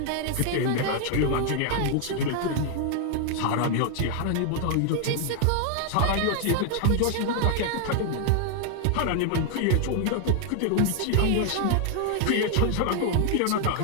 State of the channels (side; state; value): both; different; correlation 0.00